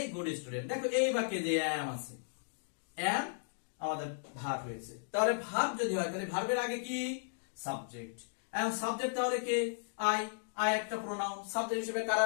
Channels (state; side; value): silent; right; digital silence